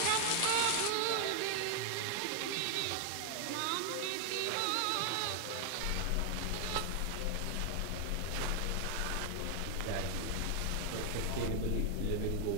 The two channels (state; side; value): different; both; correlation 0.00